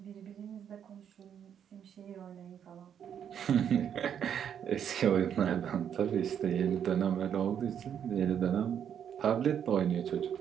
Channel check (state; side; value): quieter; left; 8.7 dB